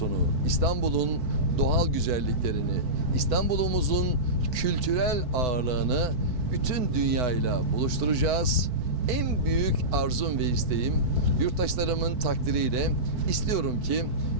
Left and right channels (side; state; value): left; late; 4.5 ms